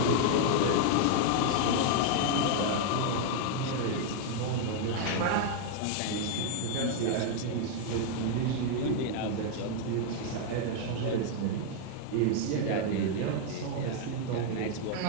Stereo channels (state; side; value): different; both; correlation 0.00